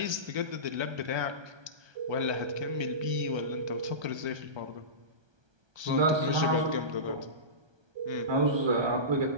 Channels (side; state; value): left; late; 1.3 ms